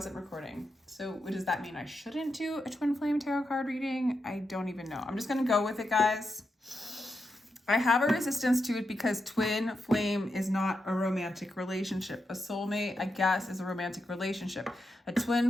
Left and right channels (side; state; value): both; normal; correlation 0.86